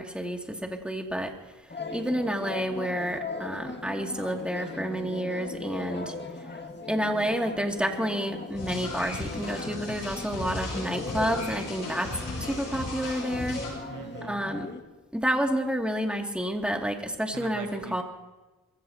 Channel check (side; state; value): both; normal; correlation 0.75